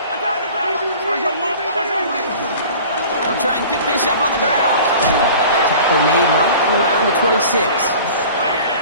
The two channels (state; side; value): inverted; both; correlation -0.43